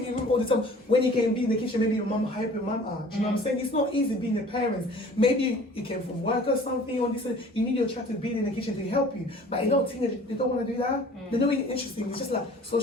in a room all the time when you can be in the kitchen? Maybe your mom help your mom out. Do you know what I'm saying? It's not easy being a parent. Maybe you came from work or something, or this. You need your child to be in the kitchen to help you. But a lot of teenagers, they don't want to do that. They're not really interesting. It's just like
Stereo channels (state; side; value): normal; both; correlation 0.48